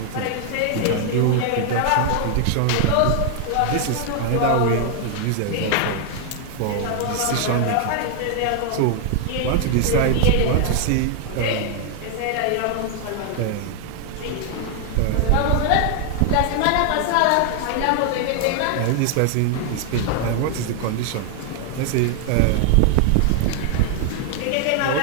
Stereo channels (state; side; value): different; both; correlation 0.00